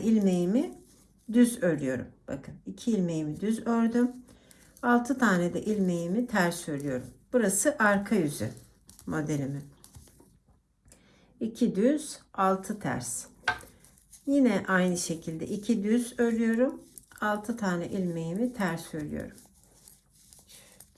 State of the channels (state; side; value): identical; both; correlation 1.00